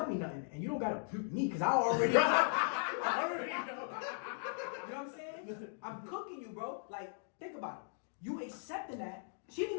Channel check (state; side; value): silent; right; digital silence